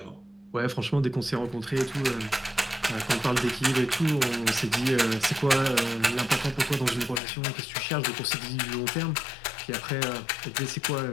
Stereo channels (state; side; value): drops out; right; at 7.2 s